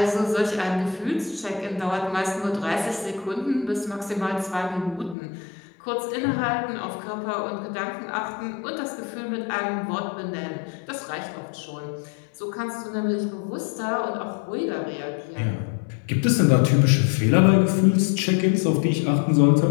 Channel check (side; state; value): right; drops out; at 5.2 s